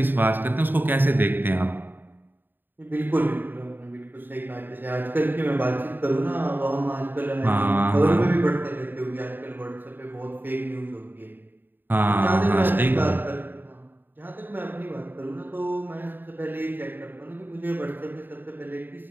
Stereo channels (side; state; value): left; late; 0.093 ms